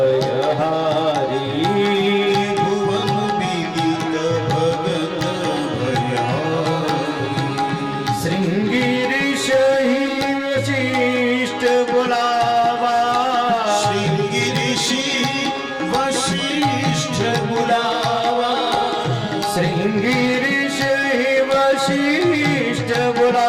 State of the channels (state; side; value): identical; both; correlation 1.00